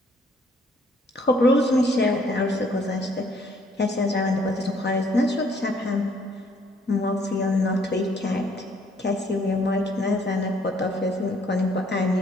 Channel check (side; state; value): both; normal; correlation 0.64